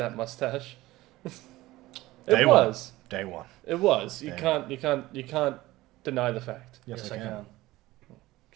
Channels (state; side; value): quieter; left; 18.0 dB